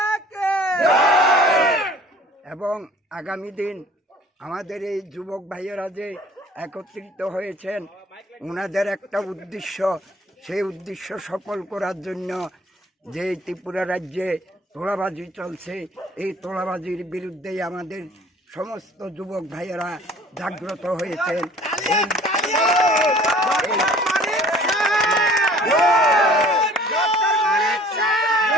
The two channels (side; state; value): both; normal; correlation 0.50